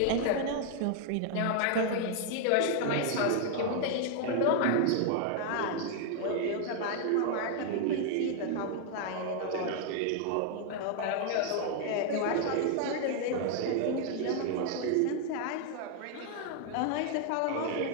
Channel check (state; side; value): different; both; correlation 0.00